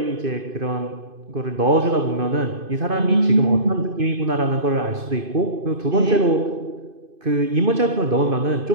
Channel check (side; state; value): left; late; 2.5 ms